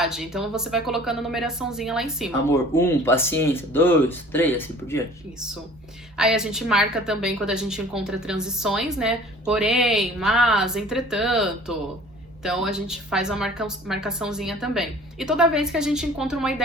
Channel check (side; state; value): both; normal; correlation 0.48